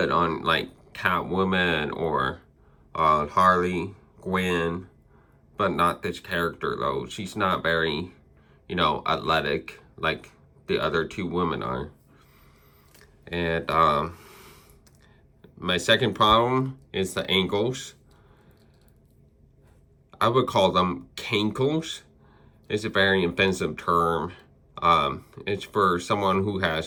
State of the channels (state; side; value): identical; both; correlation 1.00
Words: on like Catwoman or Harley Quinn, but not this character though. She's not very, you know, athletic like the other two women are. And my second problem is the ankles. I would call them cankles. It's a very offensive term. It's for someone who